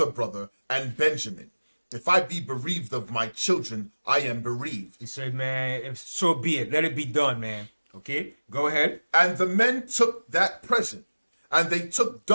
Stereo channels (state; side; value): inverted; both; correlation -1.00